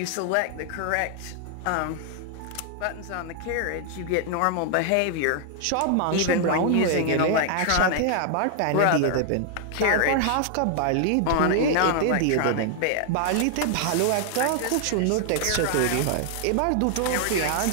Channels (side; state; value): both; different; correlation 0.00